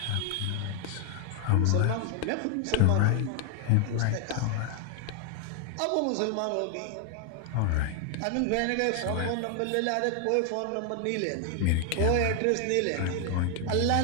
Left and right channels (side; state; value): both; different; correlation 0.01